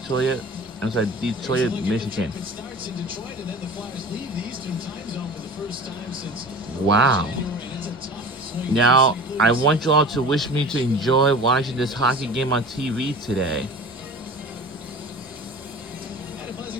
Michigan. Wow. Now I want you all to wish me to enjoy watching this hockey game on TV today. And a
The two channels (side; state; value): both; normal; correlation 0.38